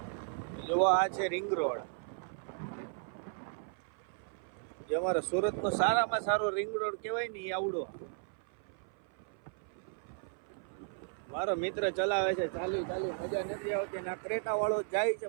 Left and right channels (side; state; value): left; silent; 54 dB below the other